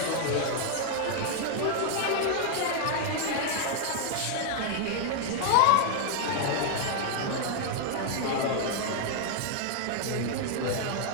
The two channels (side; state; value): both; different; correlation 0.00